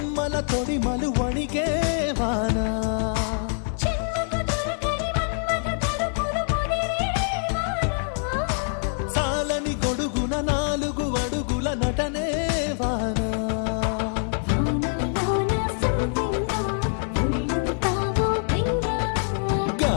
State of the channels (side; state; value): right; silent; 58 dB below the other